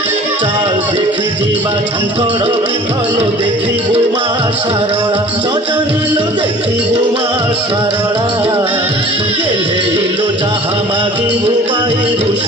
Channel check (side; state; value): both; normal; correlation 0.46